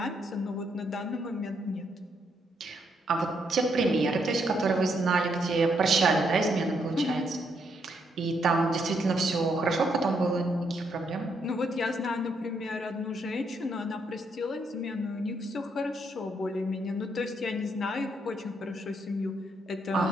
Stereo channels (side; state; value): both; normal; correlation 0.75